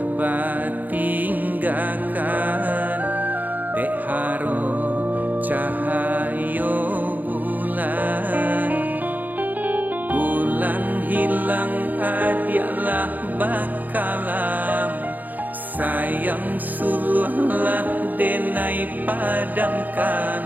batinggakan dek haro cahayo bulan bulan hilang adialah bakalam sayang suluhlah denai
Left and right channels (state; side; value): late; left; 0.083 ms